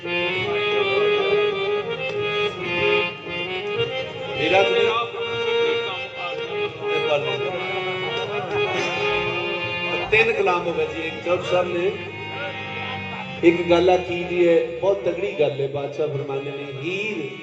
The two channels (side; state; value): both; identical; correlation 1.00